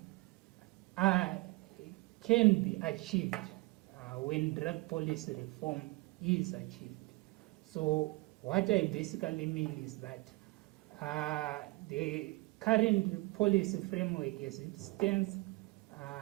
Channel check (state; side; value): quieter; left; 23.8 dB